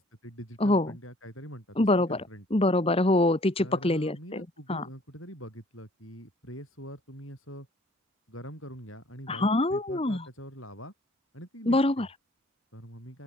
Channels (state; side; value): normal; both; correlation 0.57